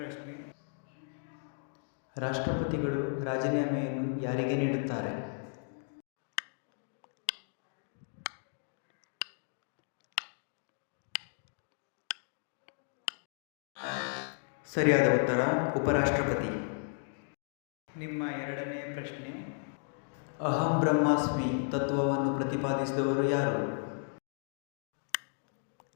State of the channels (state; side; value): silent; right; 55 dB below the other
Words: ರಾಷ್ಟ್ರಪತಿಗಳು ರಾಜೀನಾಮೆಯನ್ನು ಯಾರಿಗೆ ನೀಡುತ್ತಾರೆ? ಸರಿಯಾದ ಉತ್ತರ ಉಪರಾಷ್ಟ್ರಪತಿ. ನಿಮ್ಮ ಎರಡನೆಯ ಪ್ರಶ್ನೆ, ಅಹಂ ಬ್ರಹ್ಮಾಸ್ಮಿ ತತ್ವವನ್ನು ಪ್ರತಿಪಾದಿಸಿದವರು ಯಾರು?